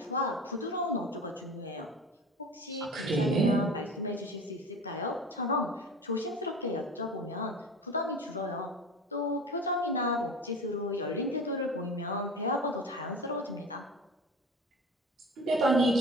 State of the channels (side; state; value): both; normal; correlation 0.34